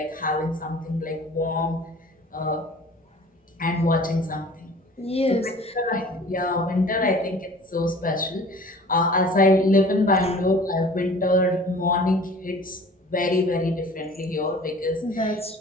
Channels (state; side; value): normal; both; correlation 0.46